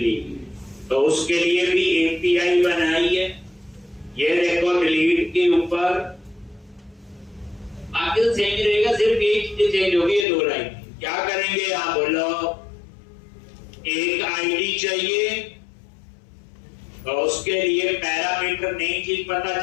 तो उसके लिए भी एपीआई बनाई है। ये देखो डिलीट के ऊपर आगे तो सेम ही रहेगा, सिर्फ एक चीज चेंज होगी, ये 2 लाइन। क्या करेंगे यहां बोलो, एक आईडी चाहिए, तो उसके लिए पैरामीटर नई चीज पता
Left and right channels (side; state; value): right; drops out; at 10.2 s